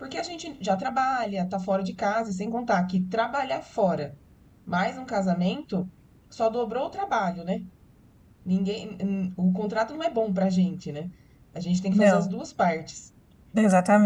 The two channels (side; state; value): both; identical; correlation 1.00